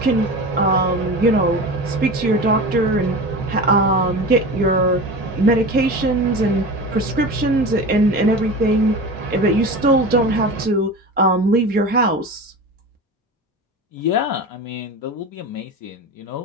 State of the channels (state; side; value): normal; both; correlation 0.30